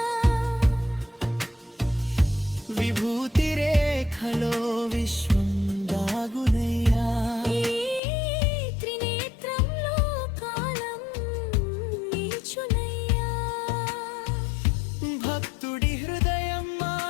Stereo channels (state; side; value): drops out; right; at 8.0 s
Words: విభూతి రేఖలో విశ్వం దాగునయ్యా ఈ త్రినేత్రంలో కాలం నిల్చునయ్యా భక్తుడి హృదయం